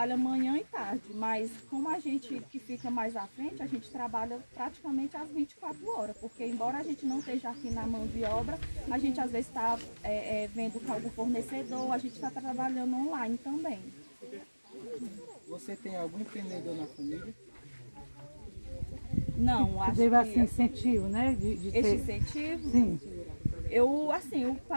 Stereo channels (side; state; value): both; inverted; correlation -1.00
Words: manhã e tarde, mas como a gente que fica mais à frente, a gente trabalha praticamente às 24 horas, porque embora a gente não esteja aqui na mão de obra, a gente às vezes está vendo com algum fornecedor, a gente está trabalhando online também. Você tem algum empreendedor na família? Não, acho Teve que assim incentivo, né? De esse ter... incentivo... Sim. O